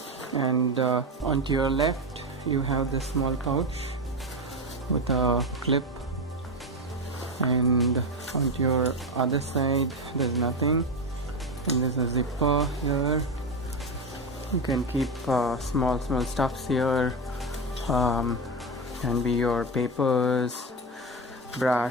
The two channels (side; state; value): both; normal; correlation 0.16